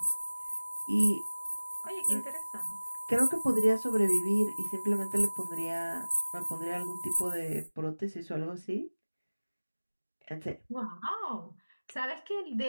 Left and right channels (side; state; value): both; inverted; correlation -1.00